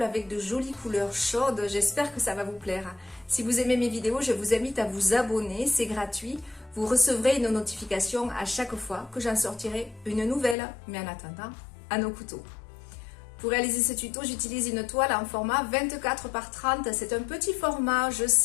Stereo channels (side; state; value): right; drops out; at 10.6 s